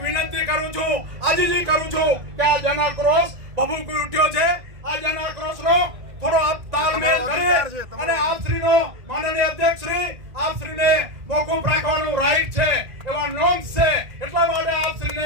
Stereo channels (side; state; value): left; late; 1.9 ms